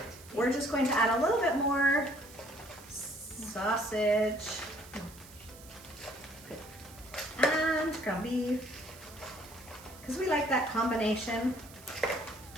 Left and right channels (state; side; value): noise; right; hiss, 20 dB below the sound